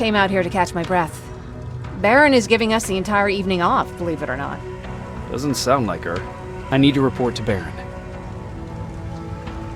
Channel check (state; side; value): identical; both; correlation 1.00